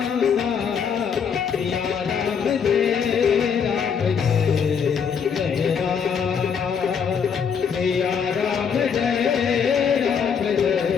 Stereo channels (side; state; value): right; quieter; 6.8 dB